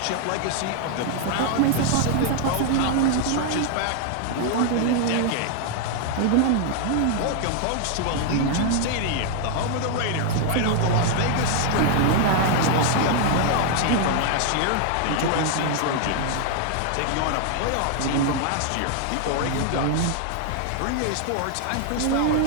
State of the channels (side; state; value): both; different; correlation 0.00